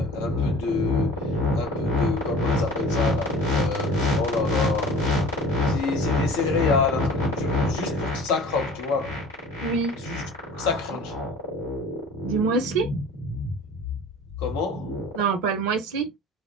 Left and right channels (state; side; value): normal; both; correlation 0.43